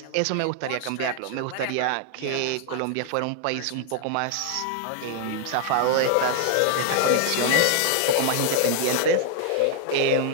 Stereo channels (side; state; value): both; different; correlation 0.00